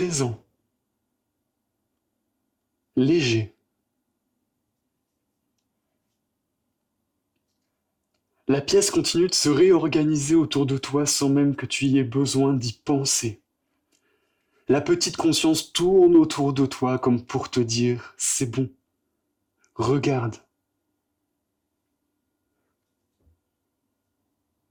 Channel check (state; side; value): identical; both; correlation 1.00